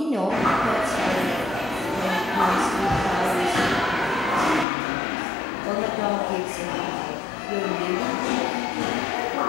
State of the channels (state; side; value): drops out; right; at 4.7 s